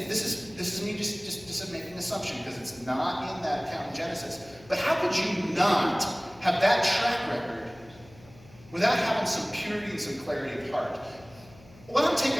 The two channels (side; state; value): left; noise; hum, 23 dB below the sound